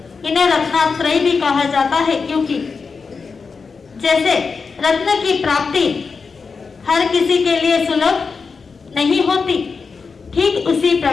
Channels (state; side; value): quieter; right; 5.0 dB